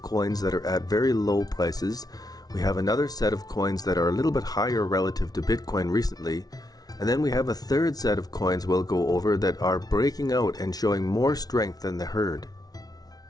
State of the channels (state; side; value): late; right; 0.19 ms